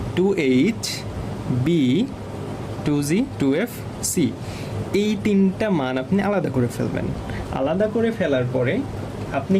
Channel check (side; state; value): both; identical; correlation 1.00